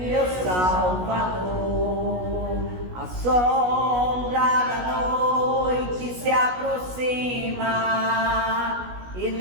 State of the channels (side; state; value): left; late; 16 ms